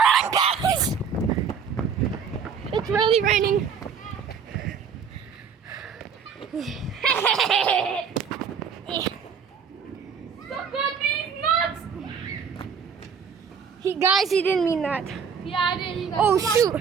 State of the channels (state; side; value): quieter; left; 6.5 dB